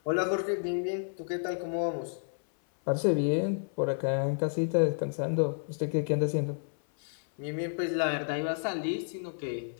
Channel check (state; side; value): silent; right; 57 dB below the other